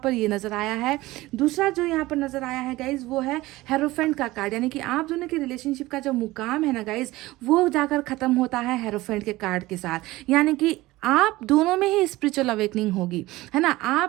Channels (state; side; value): quieter; left; 18.7 dB